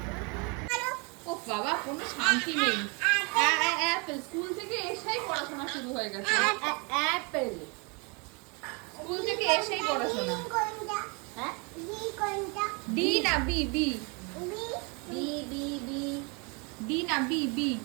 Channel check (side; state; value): left; quieter; 31.8 dB